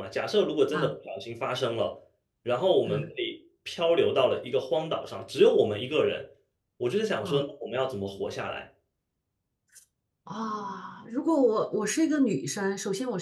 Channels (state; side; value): identical; both; correlation 1.00